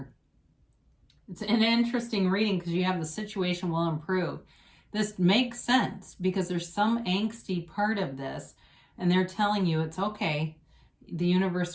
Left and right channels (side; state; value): both; identical; correlation 1.00